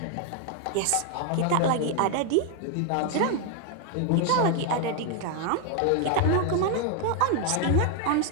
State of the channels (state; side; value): different; both; correlation 0.00